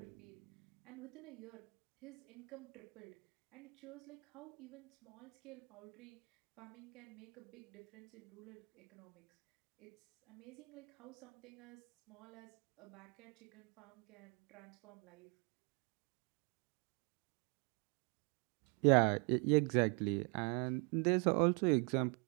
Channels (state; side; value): quieter; left; 35.1 dB